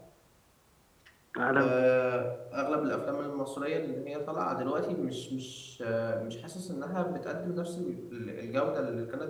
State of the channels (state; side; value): identical; both; correlation 1.00